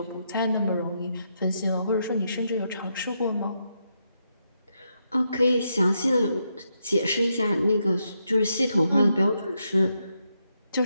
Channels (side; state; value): both; inverted; correlation -0.81